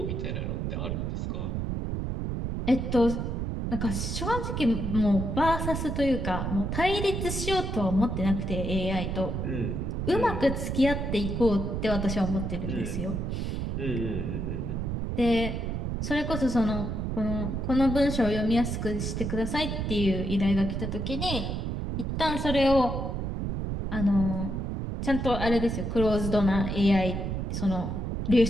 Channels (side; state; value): right; noise; rumble, 2 dB below the sound